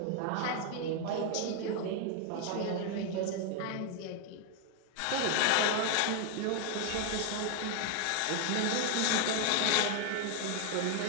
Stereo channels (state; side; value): different; both; correlation 0.01